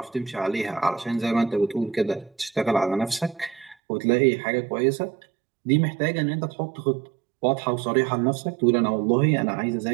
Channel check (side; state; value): left; drops out; at 3.8 s